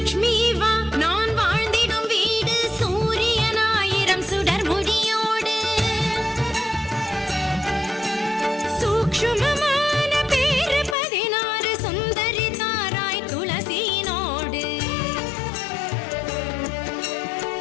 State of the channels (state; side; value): drops out; right; at 11.0 s